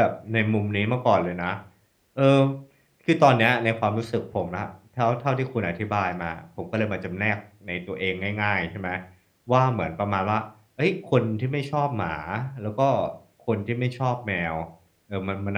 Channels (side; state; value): both; identical; correlation 1.00